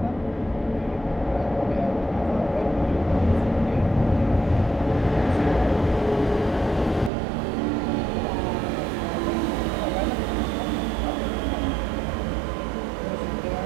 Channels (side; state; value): left; drops out; at 7.1 s